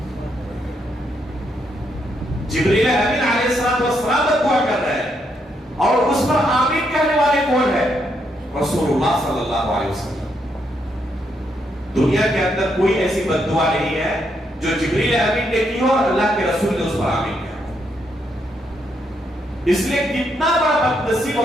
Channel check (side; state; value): both; normal; correlation 0.77